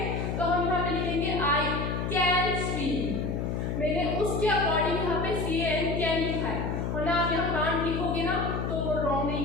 तो हम यहाँ पे लिखेंगे आई कैन स्विम। मैंने उसके अकॉर्डिंग यहाँ पे CAN कैन लिखा है, वरना आप यहाँ कांट लिखोगे ना तो वो रॉन्ग नहीं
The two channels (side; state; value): left; noise; hum, 1 dB below the sound